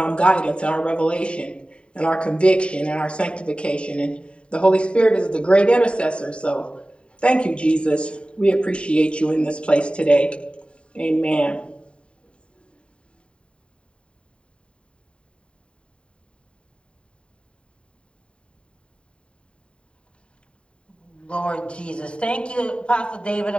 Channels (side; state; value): right; late; 0.055 ms